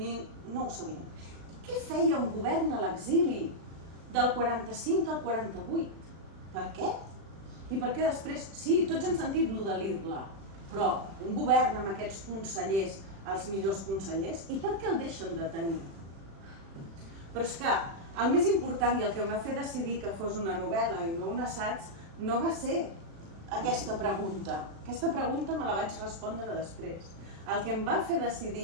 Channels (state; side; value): late; left; 36 ms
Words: ho sabien. Què feia un govern a l'exili del 45 al 48? Per què? I per què després? Sí, tots hem sentit lo de l'Irla, però un govern amb aquests consellers, els millors consellers, i per què el deixen de tenir? Però és que el més important i el que em va fer decidir que fos una novel·la i no un assaig no va ser aquesta pregunta. Aquesta pregunta me la vaig respondre després. El que em va fer